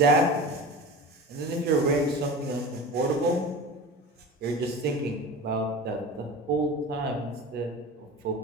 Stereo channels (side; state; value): both; normal; correlation 0.32